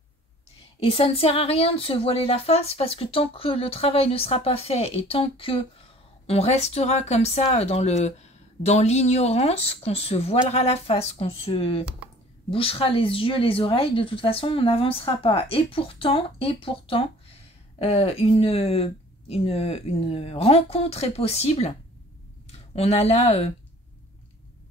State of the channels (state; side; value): normal; both; correlation 0.50